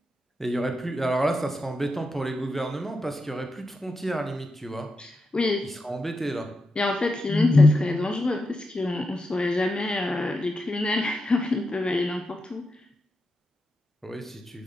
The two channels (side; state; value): both; normal; correlation 0.87